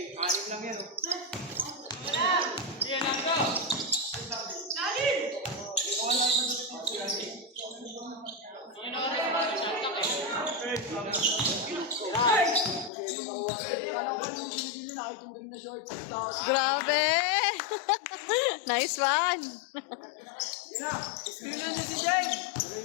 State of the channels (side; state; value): right; drops out; at 12.9 s